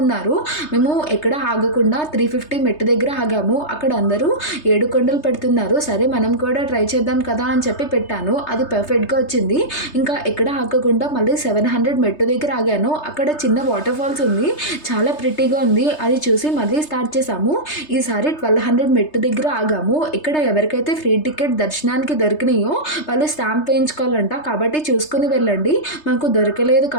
మేము ఎక్కడ ఆగకుండా 350 మెట్టు దగ్గర ఆగాము. అక్కడ అందరూ 7 కొండలు పెడుతున్నారు. సరే మనం కూడా ట్రై చేద్దాం కదా అని చెప్పి పెట్టాను. అది పర్ఫెక్ట్గా వచ్చింది. ఇంకా ఎక్కడ ఆగకుండా మళ్ళీ 700 మెట్టు దగ్గర ఆగాను. అక్కడ చిన్న వాటర్ ఫాల్స్ ఉంది, చాలా ప్రిటీగా ఉంది. అది చూసి మళ్ళీ స్టార్ట్ చేసాము. ఈసారి 1200 మెట్టు దగ్గర ఆగాము. ఇక్కడ ఎవరికైతే ఫ్రీ టికెట్ దర్శనానికి దొరికినాయో వాళ్ళు స్టాంప్ వేయించుకోవాలంట, కాబట్టి చూసుకుని వెళ్ళండి. మాకు దొరకలేదు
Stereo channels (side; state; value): right; late; 3.3 ms